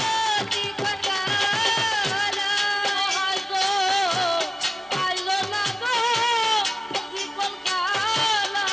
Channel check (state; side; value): normal; both; correlation 0.97